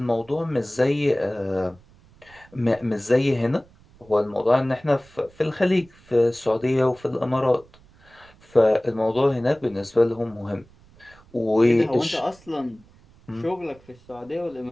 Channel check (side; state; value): right; noise; rumble, 27 dB below the sound